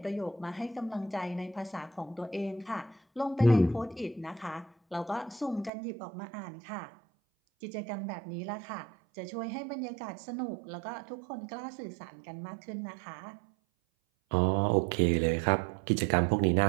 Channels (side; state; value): left; drops out; at 5.7 s